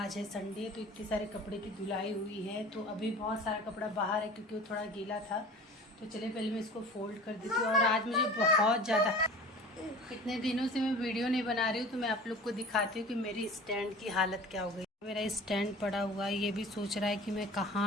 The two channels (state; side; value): normal; both; correlation 0.41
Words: है संडे, तो इतने सारे कपड़े की धुलाई हुई है। तो अभी बहुत सारा कपड़ा बाहर है क्योंकि वो थोड़ा गीला था। तो चलिए पहले मैं इसको फोल्ड कर देती हूँ। और आज मुझे बहुत ज़्यादा, इतने दिनों से मैं वीडियो नहीं बना रही हूँ तो मैं आप लोग को दिखाती हूँ कि मेरी स्टैंड की हालत क्या हो गई। मेरा स्टैंड पड़ा हुआ है, ये भी सोच रहा है कि मैं